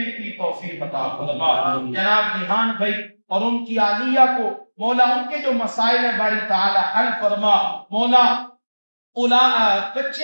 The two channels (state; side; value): inverted; both; correlation -1.00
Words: کی توفیق عطا فرما۔ جناب ریحان بھائی اور ان کی عالیہ کو مولا ان کے جو مسائل ہیں باری تعالی حل فرما۔ مولا